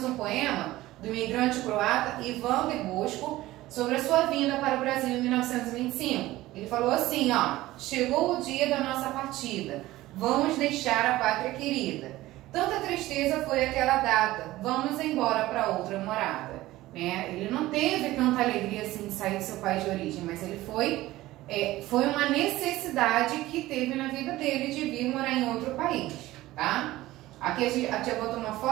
um poema do imigrante croata Ivan de Bosco sobre a sua vinda para o Brasil em 1925. Ele falou assim, ó: chegou o dia da nossa partida, vamos deixar a pátria querida. Tanta tristeza foi aquela data, vamos embora para outra morada. Né? Ele não teve tanta alegria assim de sair do seu país de origem, mas ele foi uma necessidade que teve na vida dele de vir morar em outro país, tá? Aqui a tia botou uma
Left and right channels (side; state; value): left; quieter; 17.0 dB